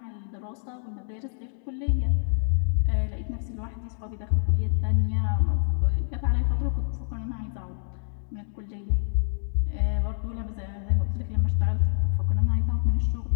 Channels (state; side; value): silent; right; digital silence